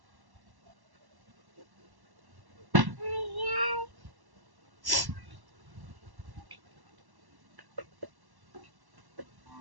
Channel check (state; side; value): late; left; 1.1 ms